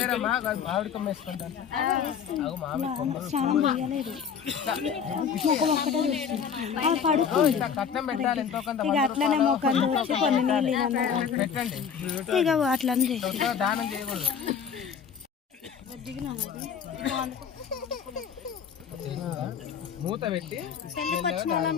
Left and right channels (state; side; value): quieter; right; 7.1 dB